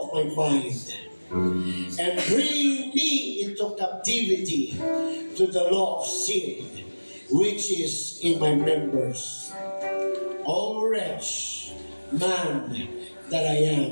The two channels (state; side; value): inverted; both; correlation -1.00